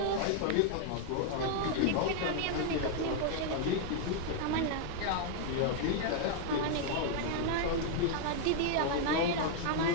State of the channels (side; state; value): both; different; correlation -0.01